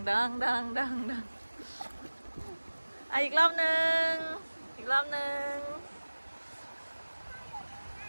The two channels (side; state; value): both; inverted; correlation -1.00